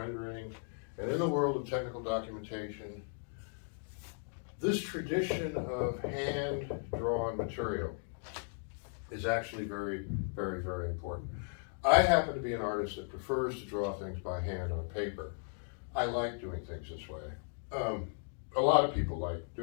and in the world of technical documentation, this tradition of hand-drawn material is actually very, very, very important. I happen to be an artist that prefers to draw things by hand on paper. I like doing things this way. A lot of people like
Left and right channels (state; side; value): silent; right; 54 dB below the other